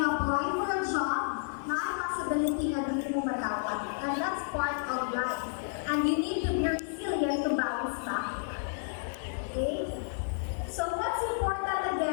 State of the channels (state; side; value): silent; right; 57 dB below the other